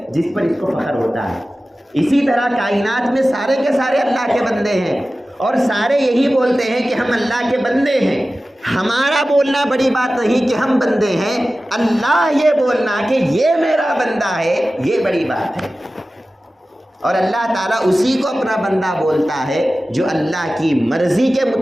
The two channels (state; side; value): normal; both; correlation 0.95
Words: جس پر اس کو فخر ہوتا ہے۔ اسی طرح کائنات میں سارے کے سارے اللہ کے بندے ہیں اور سارے یہی بولتے ہیں کہ ہم اللہ کے بندے ہیں۔ ہمارا بولنا بڑی بات نہیں کہ ہم بندے ہیں، اللہ یہ بولنا کہ یہ میرا بندہ ہے یہ بڑی بات ہے۔ اور اللہ تعالیٰ اسی کو اپنا بندہ بولتا ہے جو اللہ کی مرضی کے